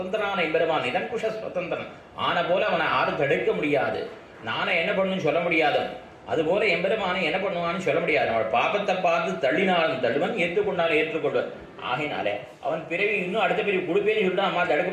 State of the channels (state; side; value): identical; both; correlation 1.00